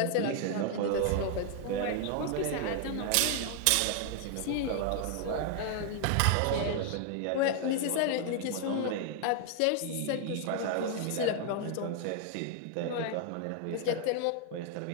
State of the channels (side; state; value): both; different; correlation 0.00